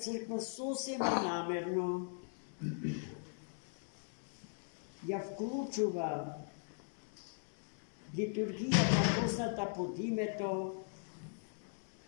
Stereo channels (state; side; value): silent; right; digital silence